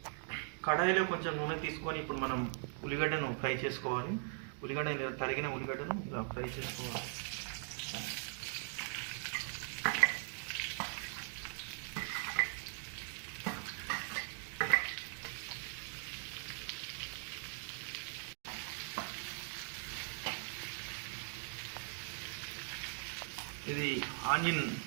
కడాయిలో కొంచెం నూనె తీసుకొని ఇప్పుడు మనం ఉల్లిగడ్డను ఫ్రై చేసుకోవాలి. ఉల్లిగడ్డ తరిగిన ఉల్లిగడ్డను ఇలా ఫ్రై చేసుకోవాలి. ఇది ఆనియన్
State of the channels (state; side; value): silent; left; 51 dB below the other